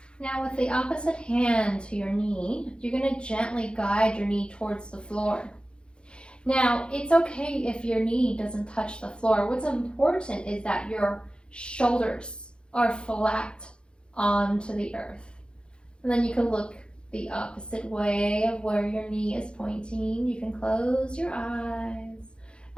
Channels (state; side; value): late; right; 0.054 ms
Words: Now with the opposite hand to your knee, you're going to gently guide your knee towards the floor. Now, it's okay if your knee doesn't touch the floor. What's important is that your shoulders are flat onto the earth. And then you can look the opposite way of where your knee is pointing. You can close your eyes